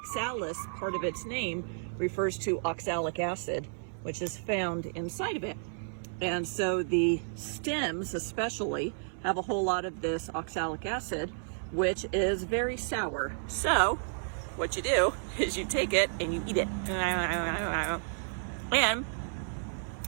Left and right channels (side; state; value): left; silent; 57 dB below the other